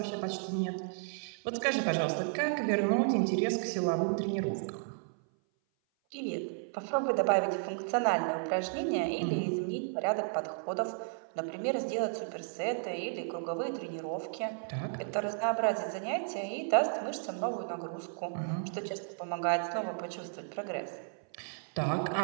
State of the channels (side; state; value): left; silent; 55 dB below the other